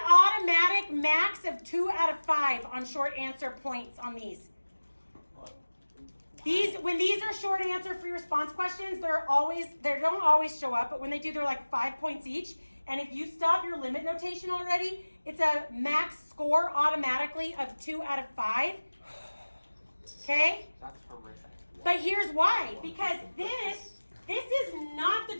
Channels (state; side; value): inverted; both; correlation -1.00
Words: automatic max of 2 out of 5 on short answer points on these. When these are short answer free response questions, they don't always show up, but when they do, they're like 5 points each. And if you stop your limit notation already, it's a max score automatically of 2 out of 5. Okay? That's horrific. But here's why. Because this is not the